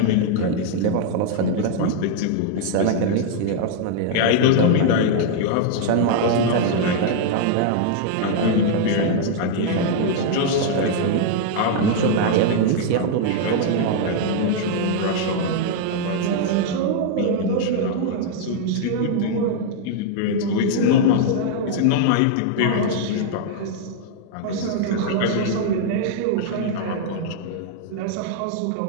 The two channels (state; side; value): different; both; correlation 0.00